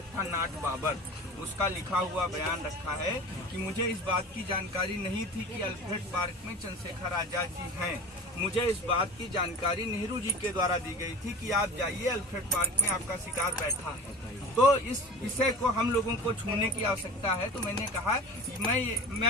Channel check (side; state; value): both; normal; correlation 0.36